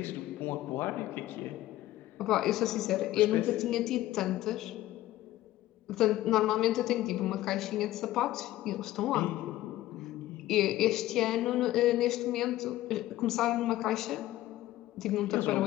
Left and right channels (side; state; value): right; quieter; 15.3 dB